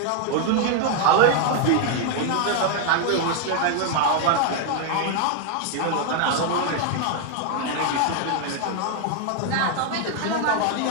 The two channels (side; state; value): both; different; correlation 0.00